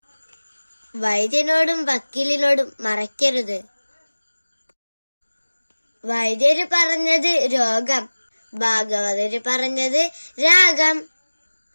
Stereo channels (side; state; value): both; inverted; correlation -1.00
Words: വൈദ്യനോടും വക്കീലിനോടും മറയ്ക്കരുത്. വൈദ്യര് പറഞ്ഞത് രോഗം, ഭാഗവതര് പറഞ്ഞത് രാഗം.